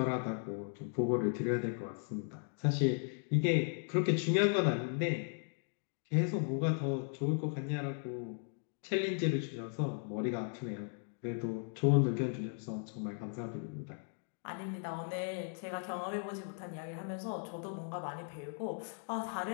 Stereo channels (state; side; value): silent; right; 53 dB below the other